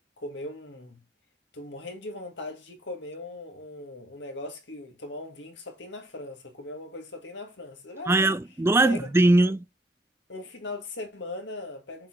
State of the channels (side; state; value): both; normal; correlation 0.65